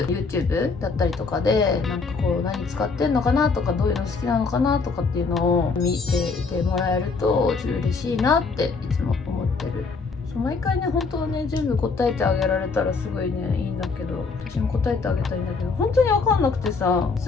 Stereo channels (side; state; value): right; quieter; 4.5 dB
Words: YouTube だったりとかで、なんかこう何使ってんのかなとか、どういうの好きなのかなとかっていうのを見ていてもらえるとちょっと嬉しいなっていつも思ってる。そ毎回ね本当はね全部答えてあげられたらすごいねいいんだけど、私も答えてあげたいんだけど本当に分かんなくてさ、